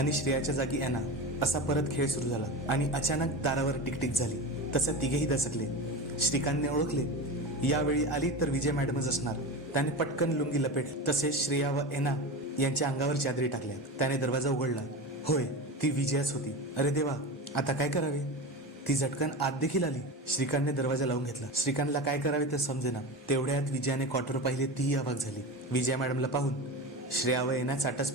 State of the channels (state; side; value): normal; both; correlation 0.25